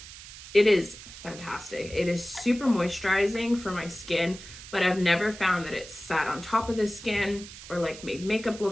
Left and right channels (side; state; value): right; noise; hiss, 15 dB below the sound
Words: it is fantastic. It is super moisturizing for my skin, but I've never found that it sat on top of the skin or like made makeup